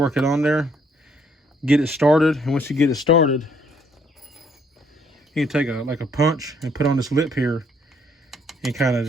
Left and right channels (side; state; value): both; normal; correlation 0.67